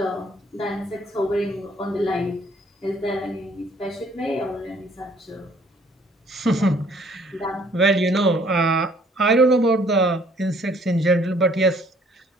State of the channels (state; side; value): normal; both; correlation 0.60